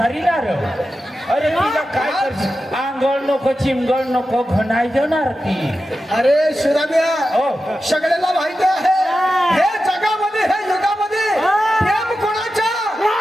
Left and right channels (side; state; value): both; normal; correlation 0.92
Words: ना र. अरे तिला काय करशील? आंघोळ नको चिमगळ नको घणाय देणार ती. अरे सुदाम्या हो. सगळ्याला माहिती आहे हे जगामध्ये हे युगामध्ये प्रेम कोणाचा?